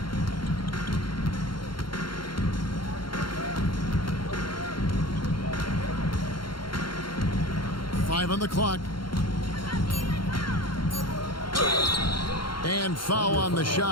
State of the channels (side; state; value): right; late; 0.73 ms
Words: Five on the clock. And foul on the